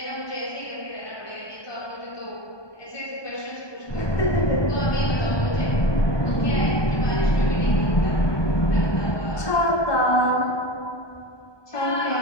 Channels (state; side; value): late; right; 1.2 ms